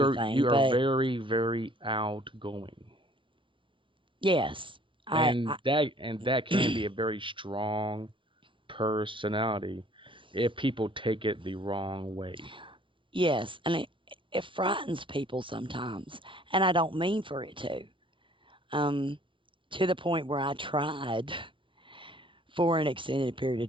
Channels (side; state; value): left; late; 0.25 ms